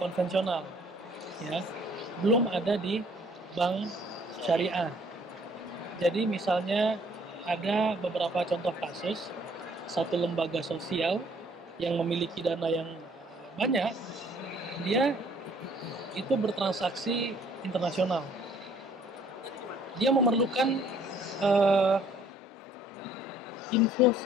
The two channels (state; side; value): normal; both; correlation 0.60